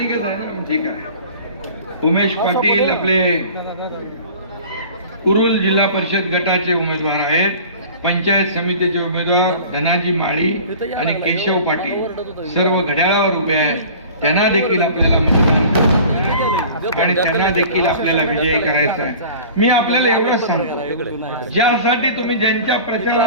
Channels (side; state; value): both; inverted; correlation -0.42